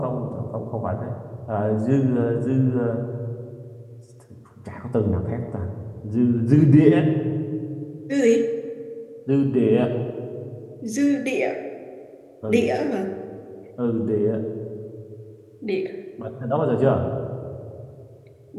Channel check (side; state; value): both; identical; correlation 1.00